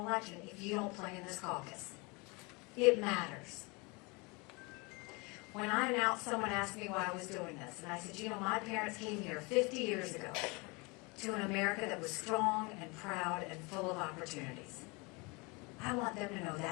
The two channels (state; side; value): quieter; right; 28.0 dB